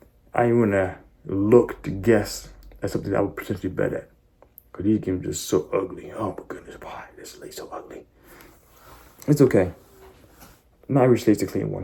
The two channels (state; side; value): identical; both; correlation 1.00